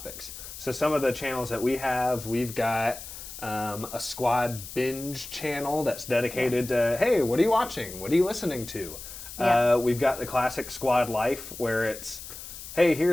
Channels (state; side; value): noise; left; hiss, 12 dB below the sound